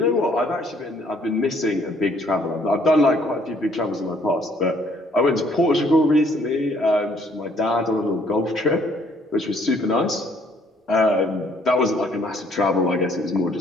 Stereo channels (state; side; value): normal; both; correlation 0.63